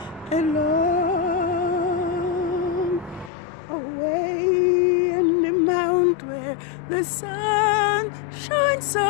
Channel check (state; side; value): drops out; right; at 3.3 s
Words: along. Away in the mount where the sun shines